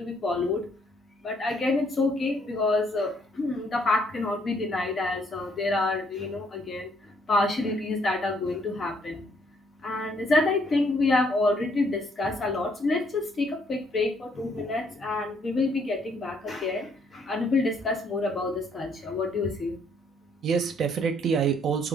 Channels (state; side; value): normal; both; correlation 0.68